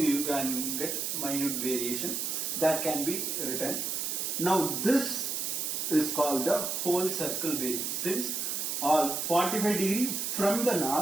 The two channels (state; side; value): noise; right; hiss, 1 dB below the sound